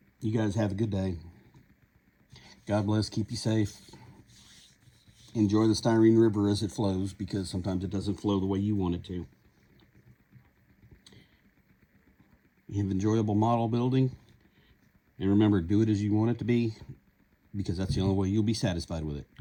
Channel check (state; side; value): identical; both; correlation 1.00